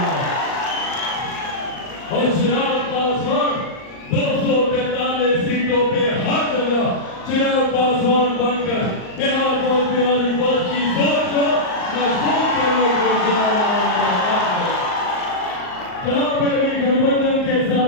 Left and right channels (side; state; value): right; late; 38 ms